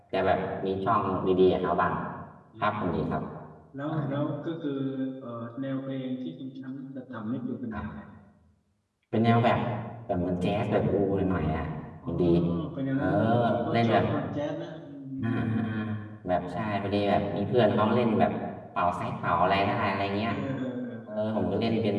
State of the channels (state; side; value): identical; both; correlation 1.00